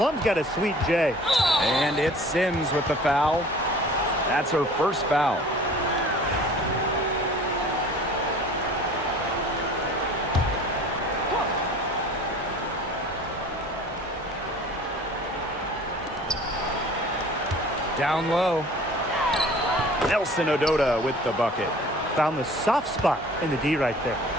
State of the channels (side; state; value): both; normal; correlation 0.46